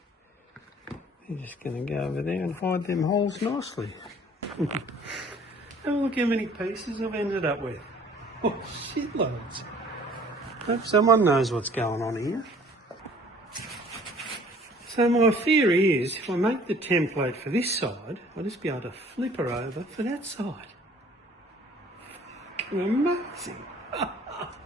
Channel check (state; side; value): normal; both; correlation 0.53